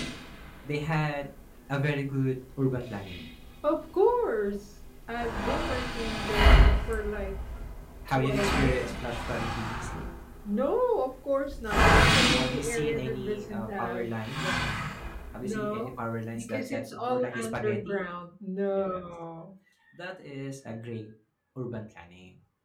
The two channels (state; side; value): identical; both; correlation 1.00